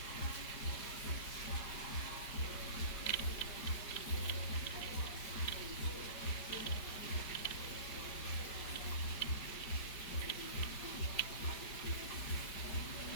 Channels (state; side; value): late; right; 5.1 ms